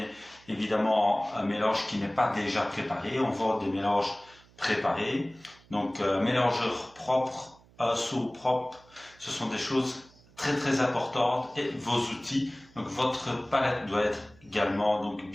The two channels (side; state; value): right; noise; hum, 27 dB below the sound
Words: évidemment un mélange qui n'est pas déjà préparé, on vend des mélanges préparés. Donc un mélangeur propre, un seau propre, ce sont des choses très importantes, et vos outils. Donc votre palette doit être également donc